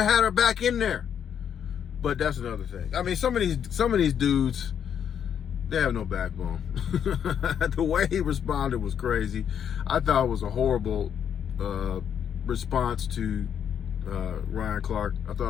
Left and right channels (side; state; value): right; quieter; 8.5 dB